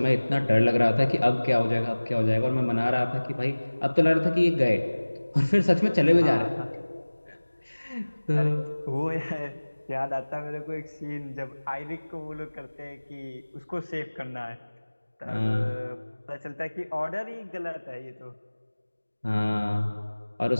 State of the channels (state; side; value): inverted; both; correlation -1.00